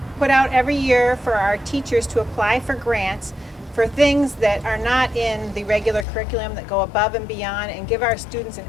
put out every year for our teachers to apply for grants for things that are not in the regular curriculum, that go above and beyond and give our students an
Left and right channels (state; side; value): drops out; right; at 6.1 s